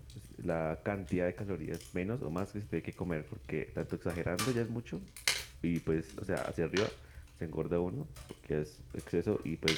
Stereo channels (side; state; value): both; identical; correlation 1.00